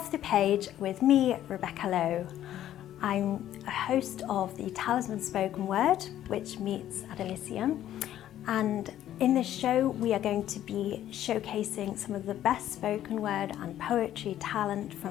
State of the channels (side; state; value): right; quieter; 12.0 dB